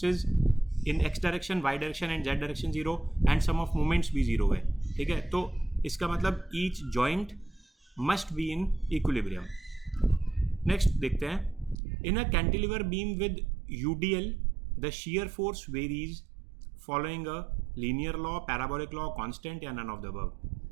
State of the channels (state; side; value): drops out; left; at 11.8 s